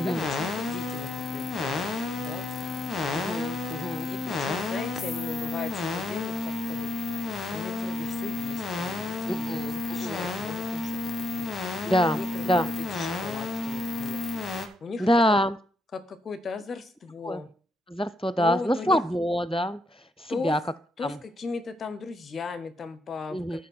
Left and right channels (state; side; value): normal; both; correlation 0.77